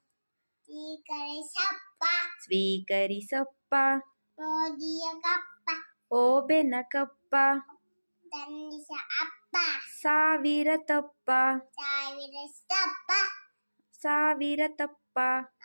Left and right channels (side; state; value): both; inverted; correlation -1.00